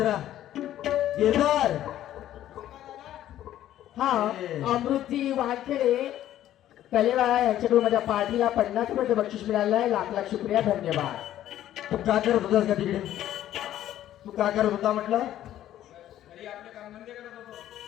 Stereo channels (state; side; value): quieter; right; 12.5 dB